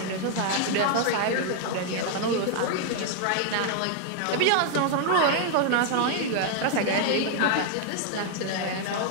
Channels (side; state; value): both; different; correlation 0.00